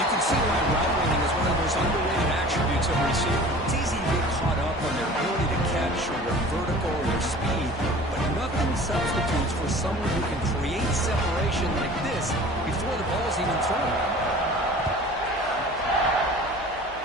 can see why route running is one of the most underrated attributes of a receiver. It's easy to get caught up on their ability to catch or their vertical or their speed, but nothing substitutes for someone who can create separation like this before the ball is even thrown.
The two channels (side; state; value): right; noise; hum, 21 dB below the sound